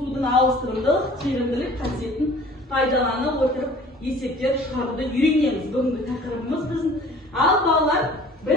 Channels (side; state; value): both; normal; correlation 0.48